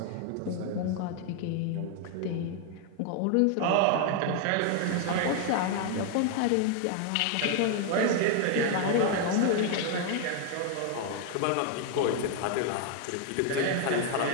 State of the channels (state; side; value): different; both; correlation 0.00